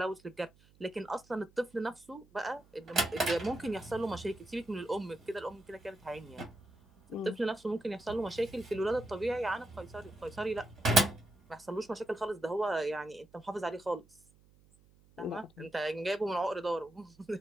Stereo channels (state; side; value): noise; right; hum, 28 dB below the sound